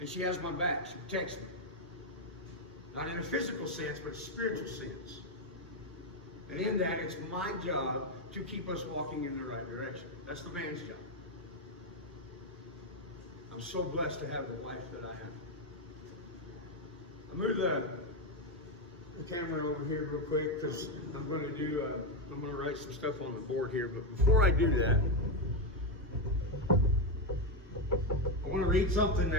she has my back, she protects me. Not in a physical sense, but a spiritual sense. And in that, it's my job to keep us walking in the right direction. That's the man's job. I'm so blessed to have the wife that I have. I'll move the camera over here real quick because I'm going to write some stuff on the board here. But before I do that, I want to read something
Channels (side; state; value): both; normal; correlation 0.07